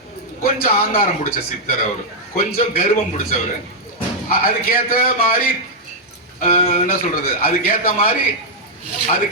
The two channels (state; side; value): normal; both; correlation -0.04